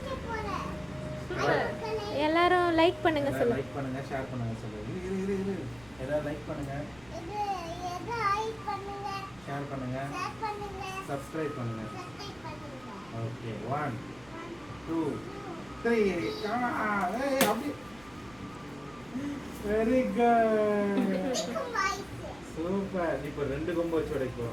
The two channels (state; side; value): noise; right; rumble, 24 dB below the sound